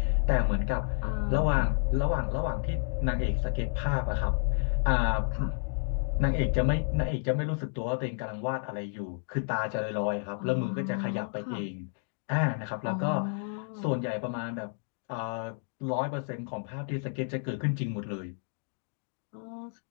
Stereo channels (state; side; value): silent; right; 57 dB below the other